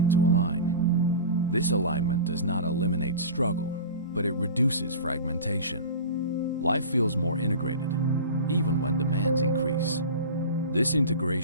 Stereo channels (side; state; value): both; inverted; correlation -0.33